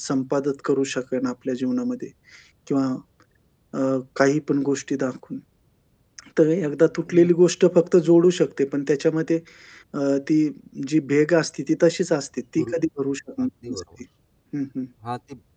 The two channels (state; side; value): identical; both; correlation 1.00